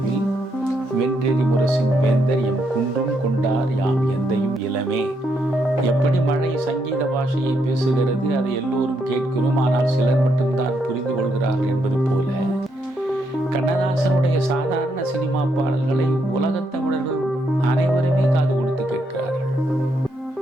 வென்றெறி முரசின் வேந்தர் எம் குன்றும் கொண்டார் யாம் எந்தையும் இளமே. எப்படி மழை சங்கீத பாஷையை பேசுகிறது, அதை எல்லோரும் கேட்கிறோம், ஆனால் சிலர் மட்டும்தான் புரிந்து கொள்கிறார்கள் என்பது போல கண்ணதாசனுடைய சாதாரண சினிமா பாடல்களை உலகத் தமிழர்கள் அனைவருமே காது கொடுத்து கேட்கிறார்கள்.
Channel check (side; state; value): both; normal; correlation 0.77